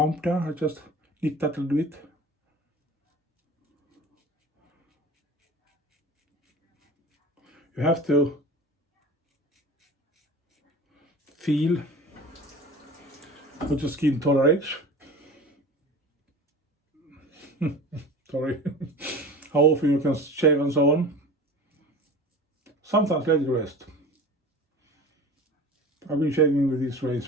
there. I just nick that a little bit. You have to feel what your skin tolerates. Sorry. How often you can shave and so on. Sometimes let it rest. I've been shaving with this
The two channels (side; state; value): both; normal; correlation 0.37